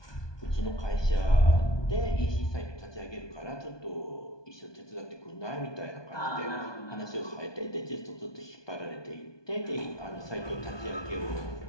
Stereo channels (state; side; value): late; right; 1.2 ms